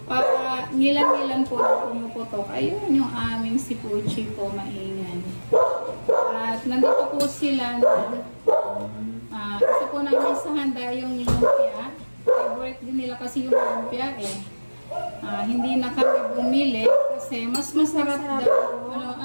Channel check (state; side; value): inverted; both; correlation -1.00